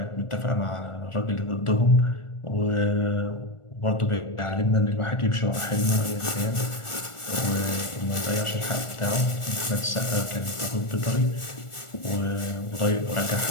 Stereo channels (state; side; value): late; right; 1.4 ms